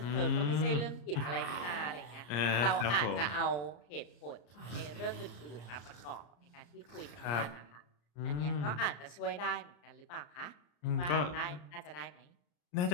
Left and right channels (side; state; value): right; late; 34 ms